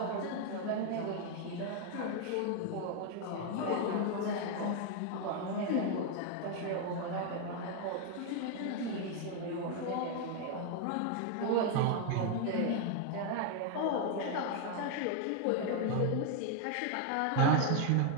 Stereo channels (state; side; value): different; both; correlation 0.01